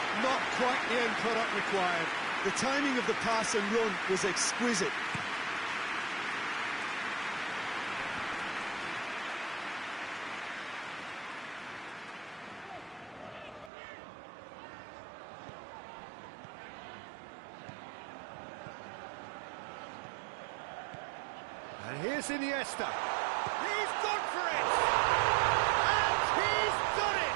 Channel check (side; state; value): left; drops out; at 13.7 s